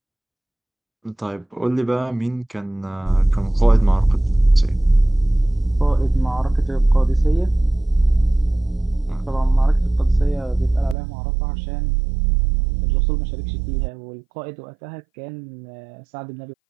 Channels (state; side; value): drops out; left; at 11.0 s